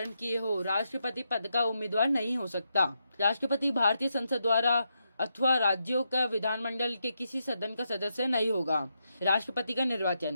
किए हो, राष्ट्रपति पद का उम्मीदवार नहीं हो सकता। राष्ट्रपति भारतीय संसद द्वारा अथवा राज्यों का विधानमंडल के किसी सदन का सदस्य नहीं होगा। राष्ट्रपति का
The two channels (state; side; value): inverted; both; correlation -0.83